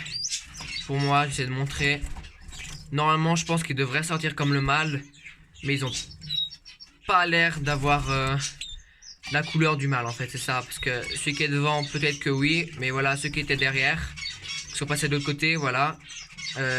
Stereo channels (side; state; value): both; identical; correlation 1.00